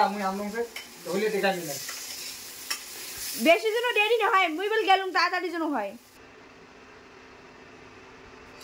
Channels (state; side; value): identical; both; correlation 1.00